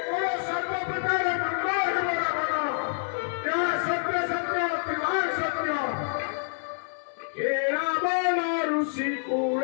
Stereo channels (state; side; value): silent; right; digital silence